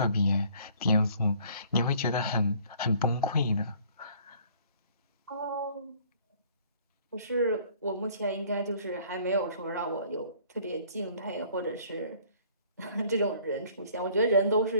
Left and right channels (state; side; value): inverted; both; correlation -0.56